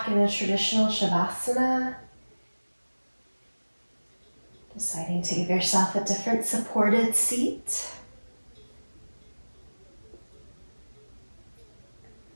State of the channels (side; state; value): both; inverted; correlation -1.00